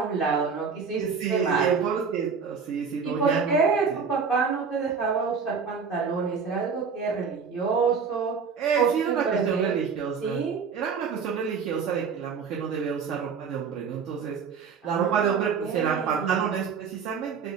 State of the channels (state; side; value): quieter; left; 5.9 dB